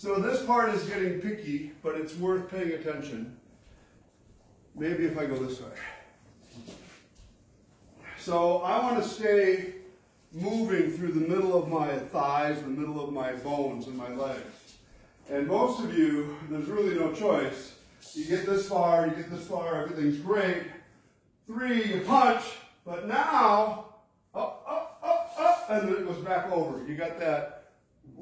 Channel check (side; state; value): both; identical; correlation 1.00